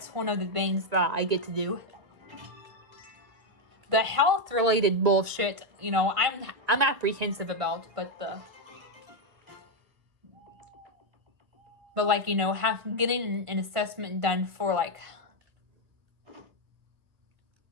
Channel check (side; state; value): left; late; 1.8 ms